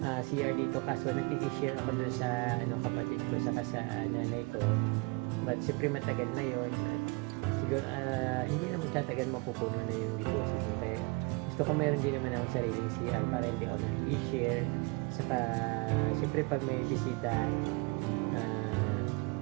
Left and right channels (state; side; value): quieter; left; 29.3 dB